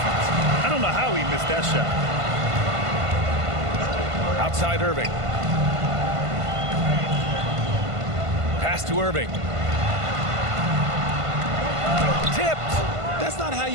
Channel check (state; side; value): late; left; 1.5 ms